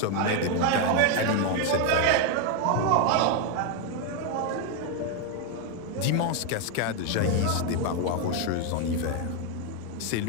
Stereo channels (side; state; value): both; different; correlation 0.01